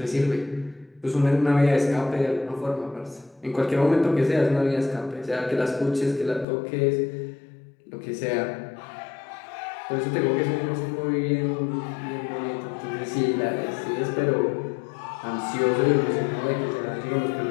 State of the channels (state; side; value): drops out; right; at 6.5 s